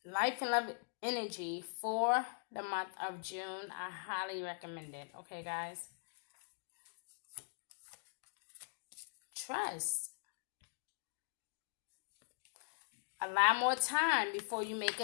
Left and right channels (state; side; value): silent; right; digital silence